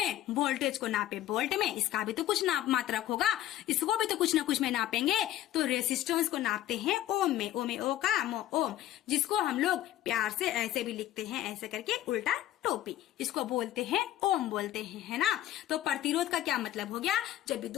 वोल्टेज को नापे वोल्ट में, इसका भी तो कुछ नाप मात्रक होगा, इसको भी तो कुछ ना कुछ में नापेंगे। तो रेसिस्टेंस को नापते हैं ओम में, ओ का ओम, जिसको हम लोग प्यार से ऐसे भी लिखते हैं, ऐसे करके उल्टा टोपी, इसको बोलते हैं ओम बोलते हैं, है ना। तो प्रतिरोध का क्या मतलब हो गया, जो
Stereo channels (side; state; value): right; quieter; 13.4 dB